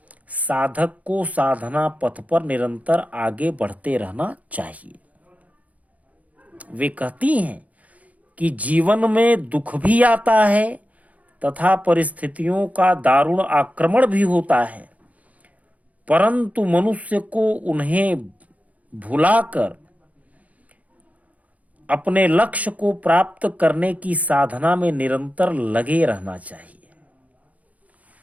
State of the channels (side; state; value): left; late; 0.071 ms